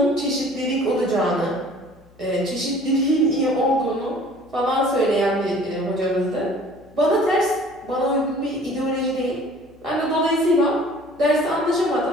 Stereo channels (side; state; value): left; noise; hum, 28 dB below the sound